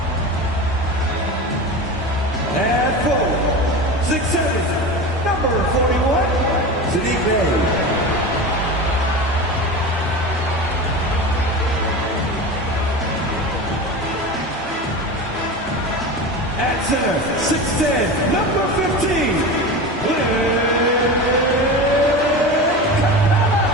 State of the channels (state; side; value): normal; both; correlation 0.28